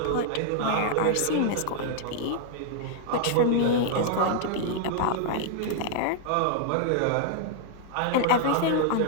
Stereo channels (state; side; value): different; both; correlation -0.01